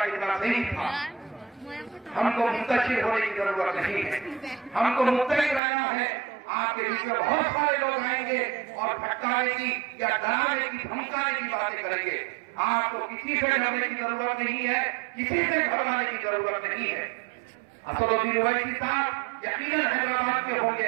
कितना सही था। हमको मुंतशिर होने की जरूरत नहीं है, हमको मुतलिक रहना है। आपके बीच में बहुत सारे लोग आएंगे और भटकाने की या डराने की धमकाने की बातें करेंगे। आपको किसी से डरने की जरूरत नहीं है, किसी से घबराने की जरूरत नहीं है। असदुद्दीन ओवैसी साहब यकीनन हैदराबाद के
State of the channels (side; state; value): left; drops out; at 5.6 s